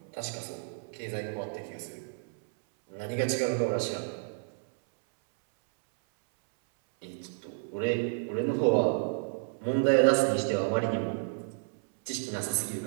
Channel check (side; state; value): left; silent; 57 dB below the other